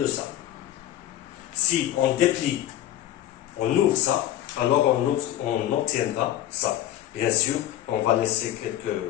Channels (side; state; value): right; quieter; 12.9 dB